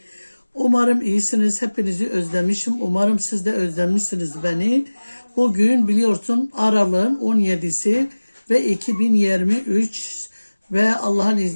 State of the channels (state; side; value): inverted; both; correlation -1.00